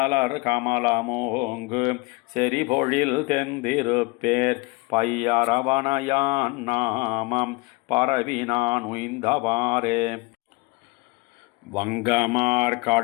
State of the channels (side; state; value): right; quieter; 25.5 dB